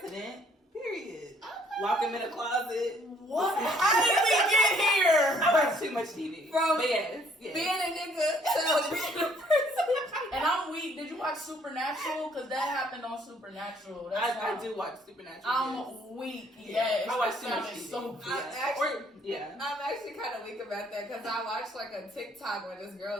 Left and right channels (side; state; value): both; normal; correlation 0.63